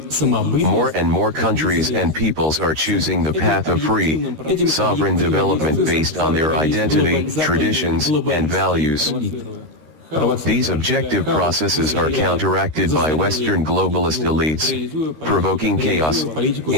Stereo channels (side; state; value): left; late; 13 ms